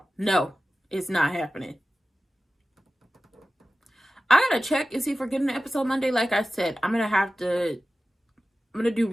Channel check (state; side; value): normal; both; correlation 0.95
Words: No, it's not happening. I gotta check and see if we're getting an episode Monday. Like I said, I'm gonna do